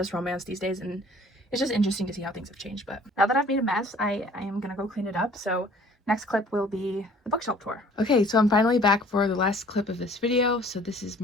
romance these days, and it's just interesting to see how things have changed. But now that I've made a mess, I am gonna go clean it up, so next clip will be the bookshelf tour. Okay, so I'm finally back for the last clip of this video. So this is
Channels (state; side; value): normal; both; correlation 0.53